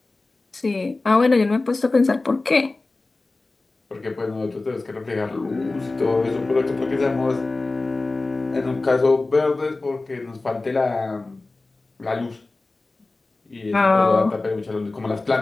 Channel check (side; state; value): right; quieter; 3.3 dB